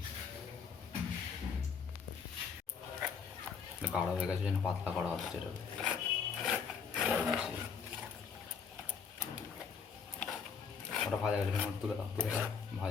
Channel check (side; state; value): right; quieter; 6.2 dB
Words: গাঢ় হয়ে গেছে যেন পাতলা করা হচ্ছে এটা। ওটা ভাজা গেছে, ওটা তুলে দাও, তুলে দাও,